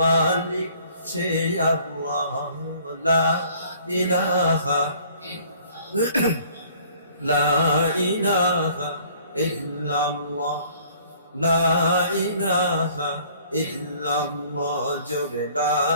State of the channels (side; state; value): both; inverted; correlation -0.56